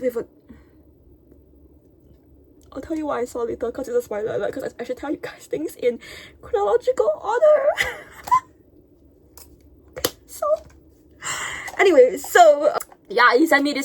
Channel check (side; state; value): both; identical; correlation 1.00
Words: a... I'll tell you why I saw later, because it's a spoiler alert, because I should tell you guys things in chronological order. Okay, so anyway, so yeah, he sent me